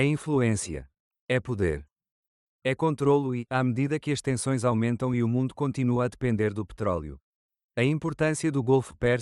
influência. É poder. É controlo e, à medida que as tensões aumentam e o mundo continua a depender do petróleo, a importância do Golfo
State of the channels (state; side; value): identical; both; correlation 1.00